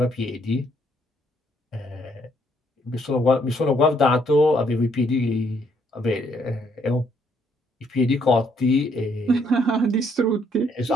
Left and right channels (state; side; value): normal; both; correlation 0.69